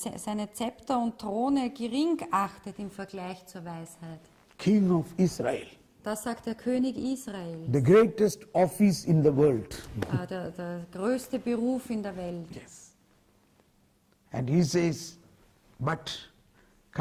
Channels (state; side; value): identical; both; correlation 1.00